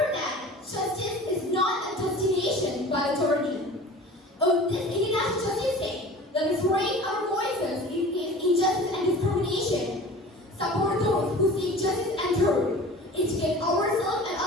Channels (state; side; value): normal; both; correlation 0.40